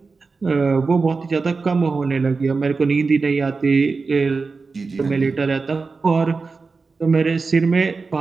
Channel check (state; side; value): quieter; left; 4.3 dB